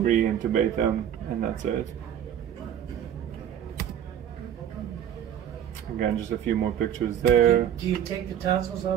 re-intubate them, and that's it. Again, just a few more pictures there. Do you take the tonsils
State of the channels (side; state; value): left; quieter; 9.8 dB